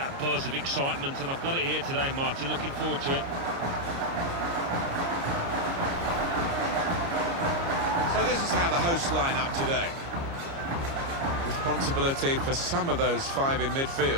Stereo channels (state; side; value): late; left; 29 ms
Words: buzz of excitement, and I've got it here today, Martin, looking forward to it. So this is how the hosts line up today. Responsibility for some of those five in